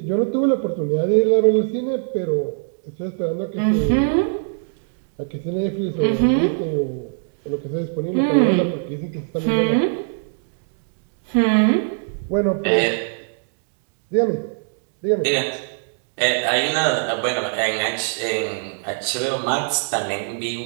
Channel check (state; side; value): silent; left; digital silence